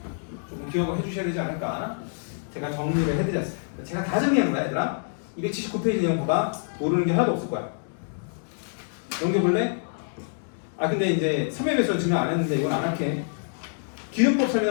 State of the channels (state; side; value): silent; right; digital silence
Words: 조금 기억을 해주셔야 되지 않을까. 제가 정리를 해드렸어요. 제가 다 정리한 거야 얘들아. 279페이지 내용 봐봐. 모르는 게 하나도 없을 거야. 넘겨볼래? 근데 이제 3회 배수는 증명 안 했는데 이건 안 할게. 기류법